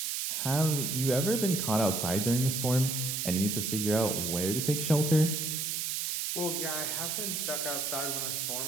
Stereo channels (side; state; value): right; noise; hiss, 1 dB below the sound